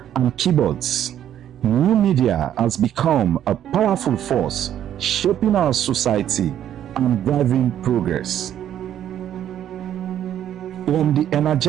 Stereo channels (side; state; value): left; quieter; 10.7 dB